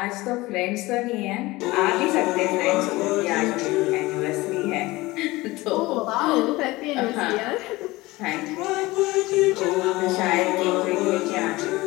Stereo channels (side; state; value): right; quieter; 20.3 dB